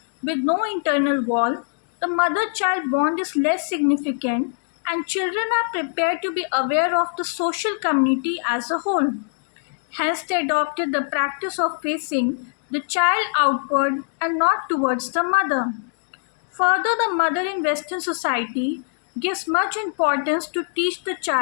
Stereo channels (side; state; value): right; silent; digital silence